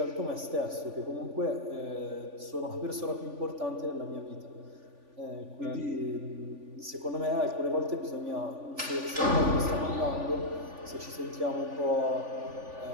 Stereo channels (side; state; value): left; late; 3.5 ms